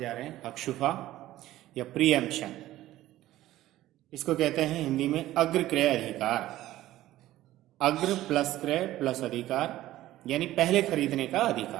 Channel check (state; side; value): quieter; left; 15.0 dB